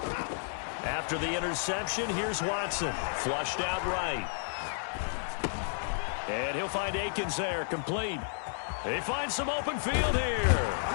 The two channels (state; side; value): silent; right; digital silence